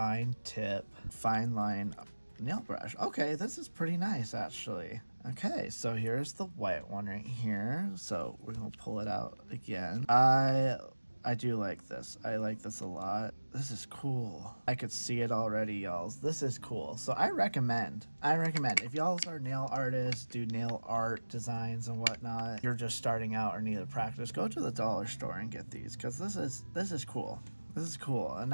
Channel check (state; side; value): inverted; both; correlation -1.00